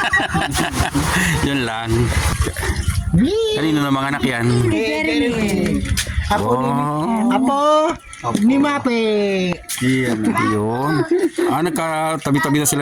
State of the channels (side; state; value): both; identical; correlation 1.00